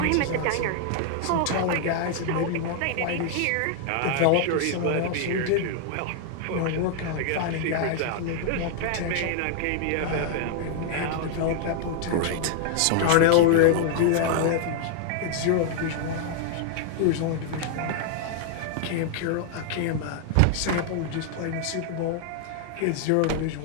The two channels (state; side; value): different; both; correlation 0.00